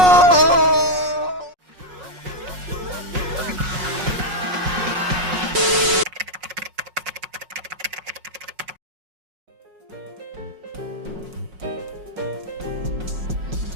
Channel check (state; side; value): late; left; 5.5 ms